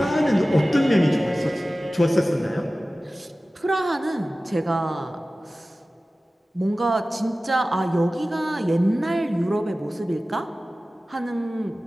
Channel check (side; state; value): both; normal; correlation 0.96